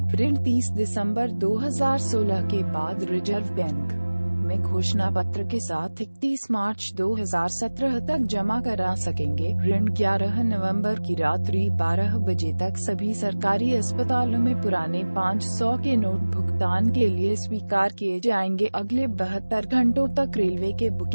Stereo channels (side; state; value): both; inverted; correlation -1.00